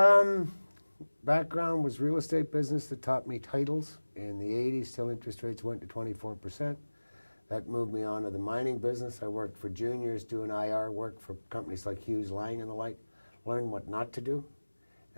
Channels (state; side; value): inverted; both; correlation -1.00